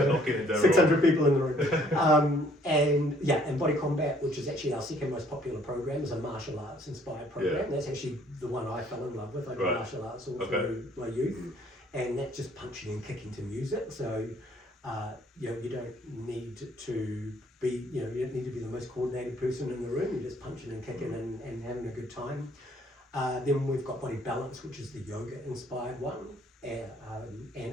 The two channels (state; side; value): normal; both; correlation 0.61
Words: 600 people in the room. And Body Combat, which is actually our second most popular program, is a martial arts inspired program. That's actually the one I fell in love with. I did martial arts all through my youth, and that's just punching and kicking to music. So you don't need to be, you don't need to be the most coordinated person in the room. You're just punching and kicking and having a good time. Then we've got Body Balance, which is the yoga inspired one, and